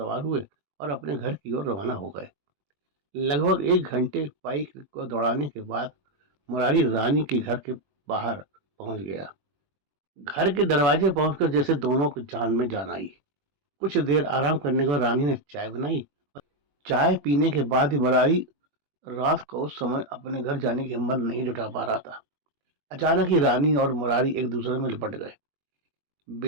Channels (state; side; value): late; left; 21 ms